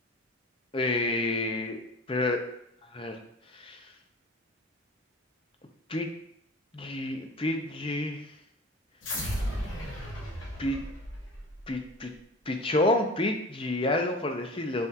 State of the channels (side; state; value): both; normal; correlation 0.37